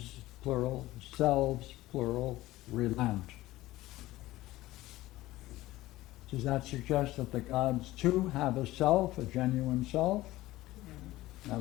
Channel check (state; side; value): quieter; right; 17.1 dB